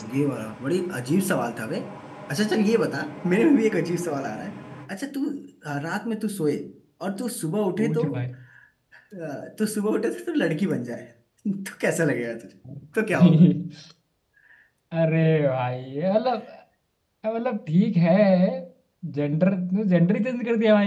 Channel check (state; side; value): identical; both; correlation 1.00